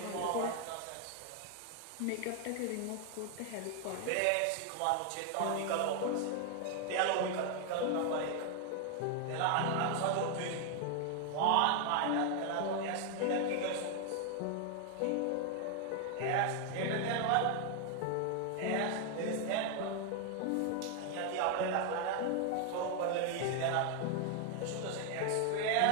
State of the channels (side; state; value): both; different; correlation 0.00